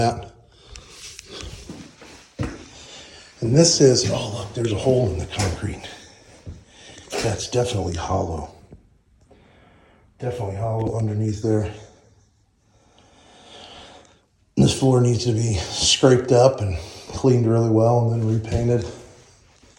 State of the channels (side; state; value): both; identical; correlation 1.00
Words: And this is, oh look, there's a hole in the concrete. That's definitely hollow. Definitely hollow underneath there. This floor needs to be scraped up and cleaned really well and then repainted.